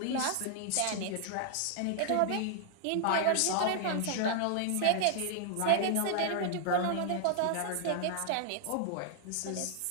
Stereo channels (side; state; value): both; different; correlation 0.00